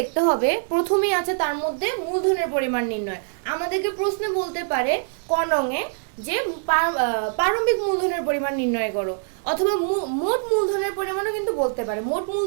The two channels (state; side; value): silent; left; digital silence